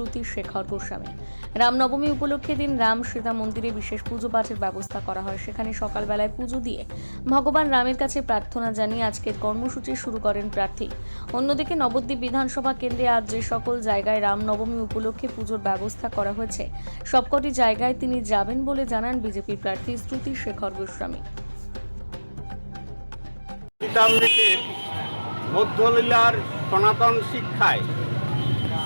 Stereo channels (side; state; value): both; inverted; correlation -1.00